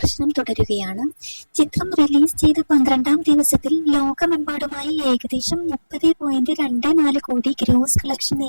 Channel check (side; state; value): both; inverted; correlation -1.00